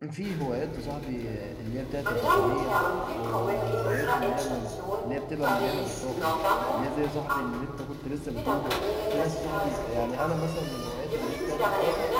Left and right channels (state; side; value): identical; both; correlation 1.00